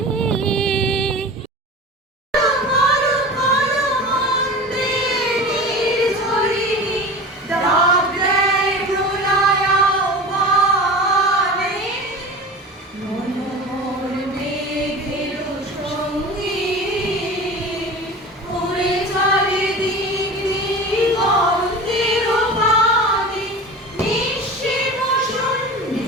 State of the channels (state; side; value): normal; both; correlation 0.34